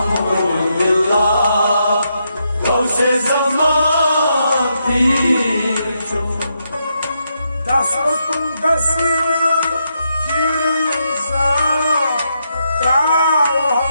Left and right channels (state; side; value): inverted; both; correlation -0.81